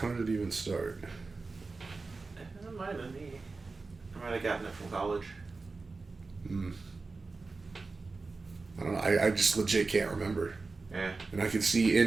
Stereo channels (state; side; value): quieter; left; 3.9 dB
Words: did it even start? It might have been me. I might have gotten it from college. I don't know. I just legit can't remember. Yeah. And I could see